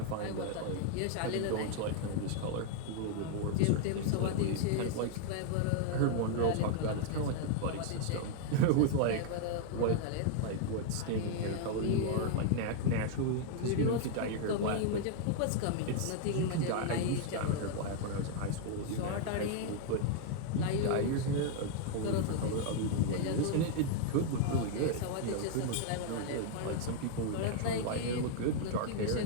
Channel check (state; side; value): different; both; correlation 0.00